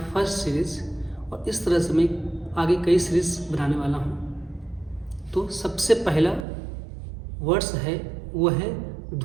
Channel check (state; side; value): drops out; left; at 6.5 s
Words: series और इस तरह से मैं आगे कई सीरीज़ बनाने वाला हूँ। तो सबसे पहला वर्ड्स है वो है